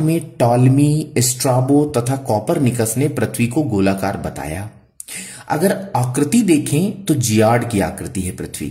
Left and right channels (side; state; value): both; identical; correlation 1.00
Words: टॉलमी, स्ट्राबो तथा कॉपरनिकस ने पृथ्वी को गोलाकार बताया। अगर आकृति देखें तो जियाड की आकृति है पृथ्वी